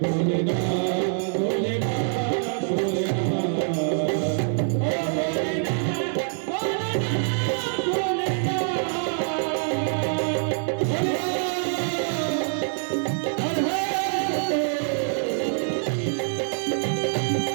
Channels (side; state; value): left; silent; 62 dB below the other